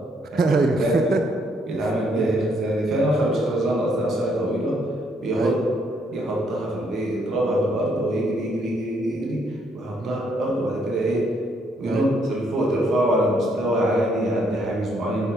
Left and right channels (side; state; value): both; normal; correlation 0.71